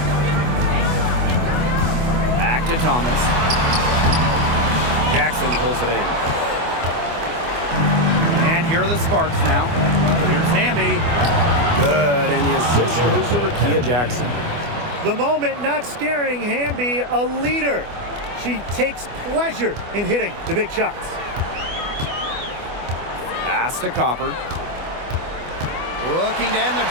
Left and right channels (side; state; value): left; late; 24 ms